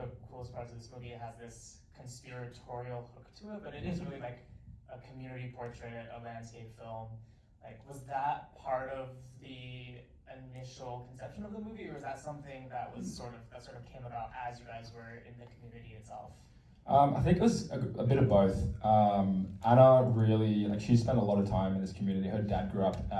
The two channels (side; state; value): both; identical; correlation 1.00